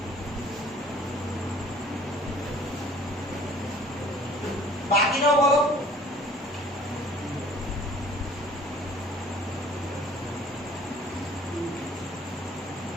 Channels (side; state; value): both; normal; correlation 0.52